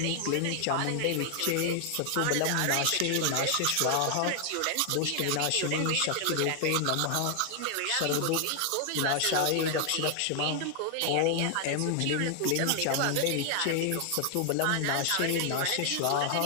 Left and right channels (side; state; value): both; different; correlation 0.00